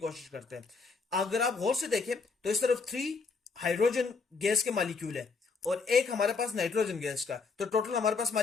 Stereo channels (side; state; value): right; quieter; 4.6 dB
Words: करते हैं। अगर आप गौर से देखें तो इस तरफ 3 हाइड्रोजन गैस के मॉलिक्यूल है और एक हमारे पास नाइट्रोजन गैस का, तो टोटल हमारे पास